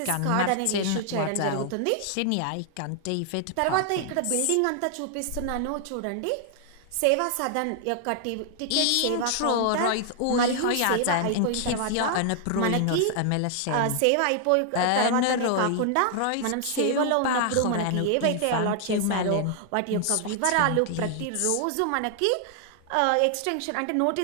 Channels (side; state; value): both; different; correlation 0.00